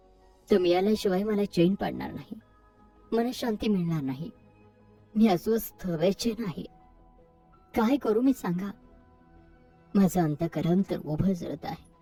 तो मिळाल्याशिवाय मला चैन पडणार नाही, मनशांती मिळणार नाही. मी अस्वस्थ बेचैन आहे. काय करू मी सांगा? माझं अंतःकरण तर उभं जळत आहे.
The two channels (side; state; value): both; identical; correlation 1.00